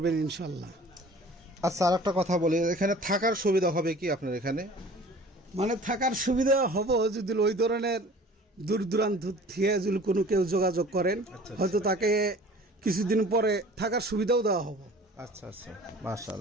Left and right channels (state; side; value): normal; both; correlation 0.46